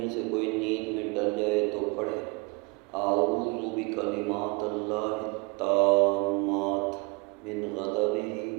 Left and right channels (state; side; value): quieter; left; 28.7 dB